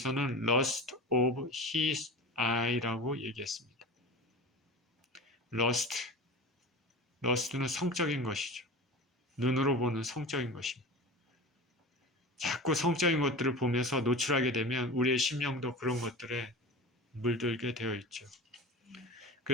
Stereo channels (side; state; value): both; normal; correlation 0.32